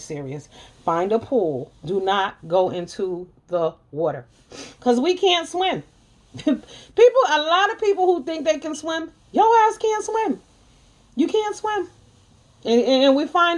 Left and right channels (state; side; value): identical; both; correlation 1.00